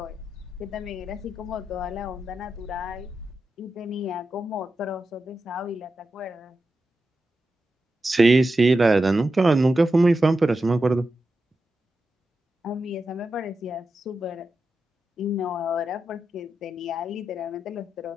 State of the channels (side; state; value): both; normal; correlation 0.89